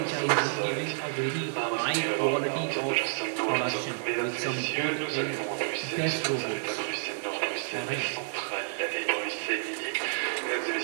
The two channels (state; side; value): silent; left; 58 dB below the other